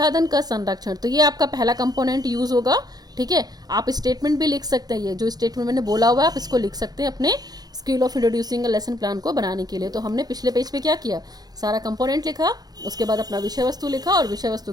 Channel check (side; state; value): left; late; 0.19 ms